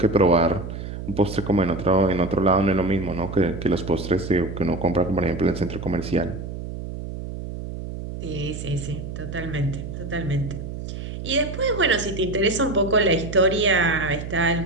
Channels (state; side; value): noise; right; hum, 8 dB below the sound